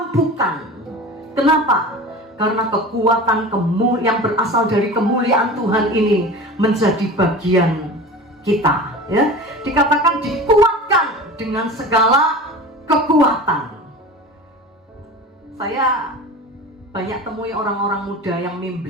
Kenapa? Karena kekuatan yang berasal dari kemuliaan Tuhan ini menjadi bagian kita, ya. Dikatakan dikuatkan dengan segala kekuatan. Saya banyak temui orang-orang muda yang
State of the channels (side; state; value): both; normal; correlation 0.34